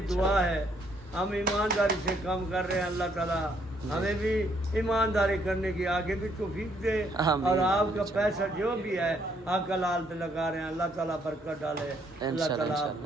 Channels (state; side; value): normal; both; correlation 0.70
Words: दुआ है, हम ईमानदारी से काम कर रहे हैं, अल्लाह ताला ہمیں بھی ایمانداری کرنے کی آگے بھی توفیق دے آمین۔ اور آپ کا پیسہ جو بھی ہے حق حلال پہ لگا رہے ہیں اللہ تعالیٰ برکت ڈالے اللہ انشاءاللہ، تعالیٰ آپ انشاءاللہ۔